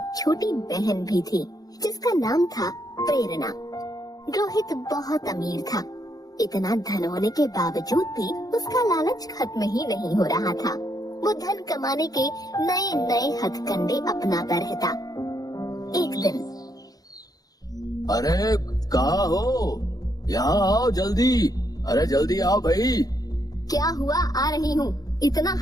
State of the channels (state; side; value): late; right; 0.18 ms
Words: छोटी बहन भी थी जिसका नाम था प्रेरणा। रोहित बहुत अमीर था। इतना धन होने के बावजूद भी उसका लालच खत्म ही नहीं हो रहा था। वो धन कमाने के नए नए हथकंडे अपनाता रहता। एक दिन, अरे कहाँ हो? यहाँ आओ जल्दी। अरे जल्दी आओ भाई। क्या हुआ? आ रही हूँ। इतना